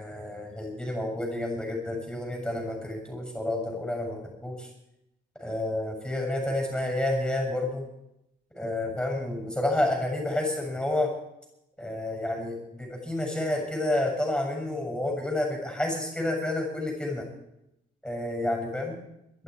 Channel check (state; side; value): normal; both; correlation 0.75